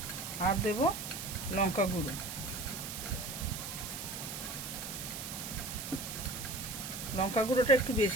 আর দেব লঙ্কা গুঁড়ো। লঙ্কা গুঁড়োটা একটু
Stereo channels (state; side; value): noise; right; hiss, 7 dB below the sound